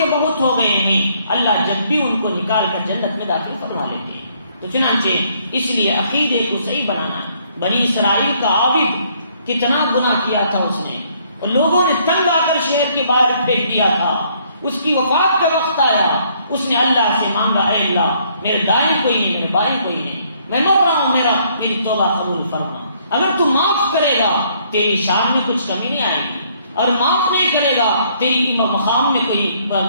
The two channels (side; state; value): both; inverted; correlation -0.66